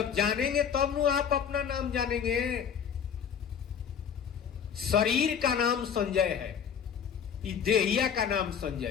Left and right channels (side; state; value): right; quieter; 7.6 dB